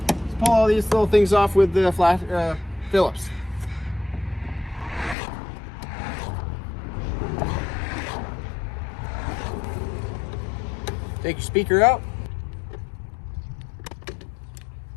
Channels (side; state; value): right; drops out; at 5.2 s